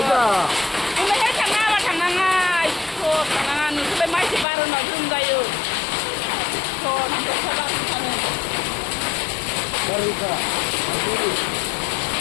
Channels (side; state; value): right; drops out; at 4.5 s